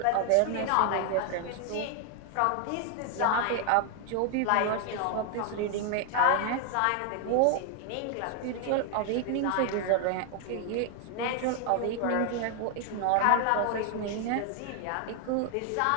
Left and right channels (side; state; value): both; different; correlation 0.00